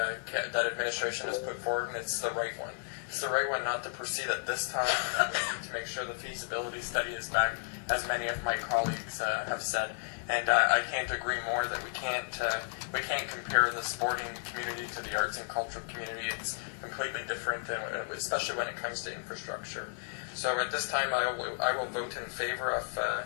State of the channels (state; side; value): silent; right; digital silence